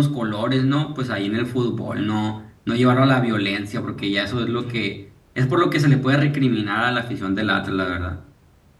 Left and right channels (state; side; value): identical; both; correlation 1.00